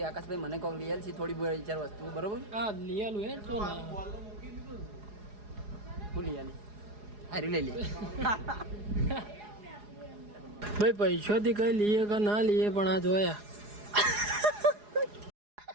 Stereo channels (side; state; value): left; late; 4.8 ms